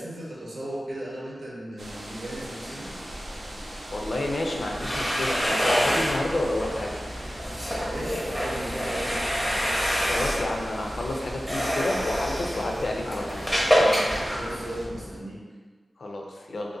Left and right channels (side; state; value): both; normal; correlation 0.95